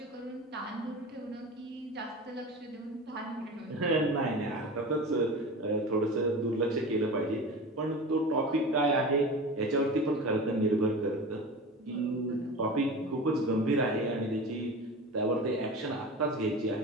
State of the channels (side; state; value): both; normal; correlation 0.32